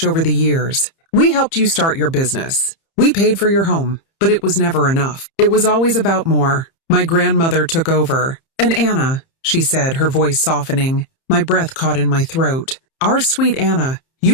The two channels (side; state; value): right; late; 30 ms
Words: over the years. We helped you start your business. We paid for your home, but it was never enough. It was always about more. My grandmother took over. And Anna, she said, her voice softening. My breath caught in my throat. Our sweet Anna,